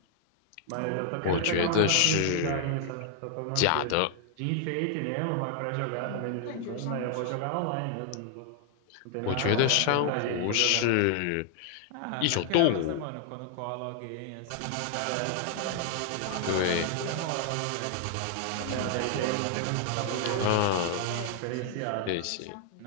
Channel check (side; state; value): both; different; correlation 0.00